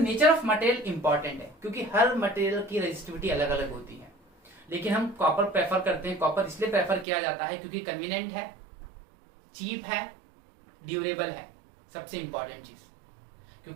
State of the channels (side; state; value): left; drops out; at 7.1 s